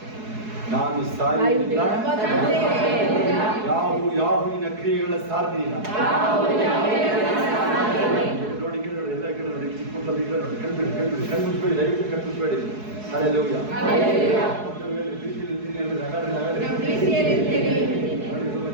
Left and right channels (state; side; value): late; left; 4.7 ms